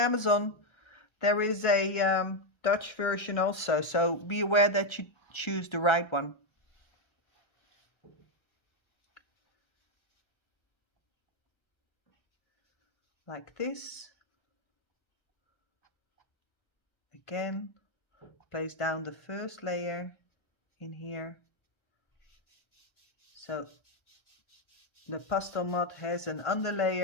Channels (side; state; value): right; late; 1.3 ms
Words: there is a Dutch version also, so be aware that you choose the right one. Like this. Again, place down the first layer in here. So the Pastelmat has an